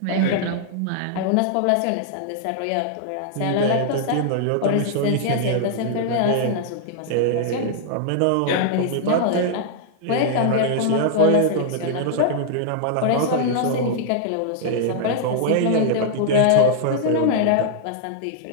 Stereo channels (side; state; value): both; different; correlation -0.01